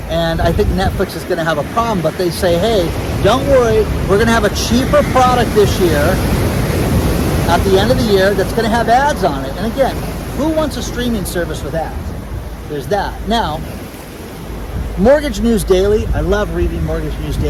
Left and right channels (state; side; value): identical; both; correlation 1.00